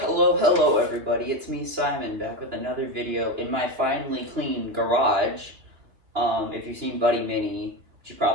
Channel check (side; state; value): left; late; 3.0 ms